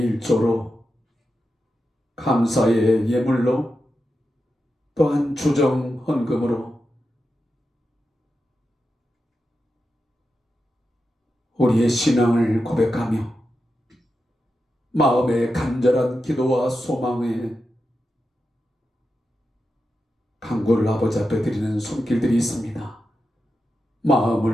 1조로 감사의 예물로 또한 주정 헌금으로 우리의 신앙을 고백하며 마음의 간절한 기도와 소망에 간구를 아버지 앞에 드리는 손길들이 있습니다.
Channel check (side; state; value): both; normal; correlation 0.89